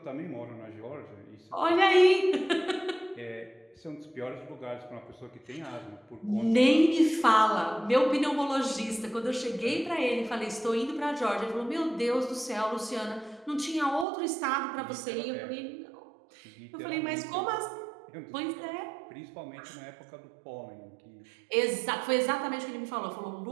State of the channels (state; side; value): drops out; left; at 14.1 s